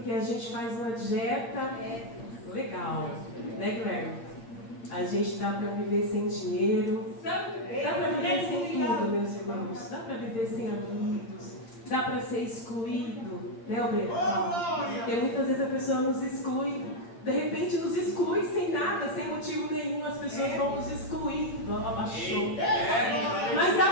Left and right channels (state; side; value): late; right; 8.7 ms